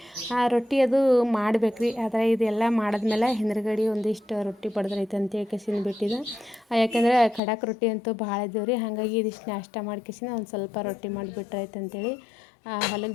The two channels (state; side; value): drops out; right; at 7.4 s